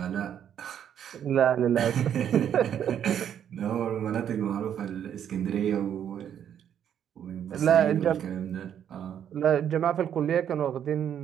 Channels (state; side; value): quieter; left; 9.3 dB